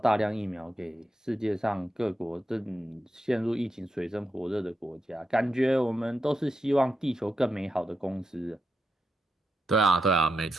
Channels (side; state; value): both; normal; correlation 0.86